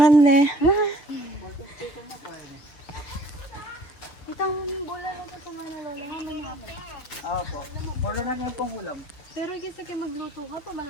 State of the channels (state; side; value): late; right; 6.9 ms